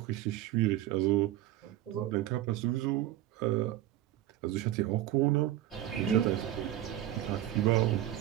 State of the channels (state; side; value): quieter; left; 13.6 dB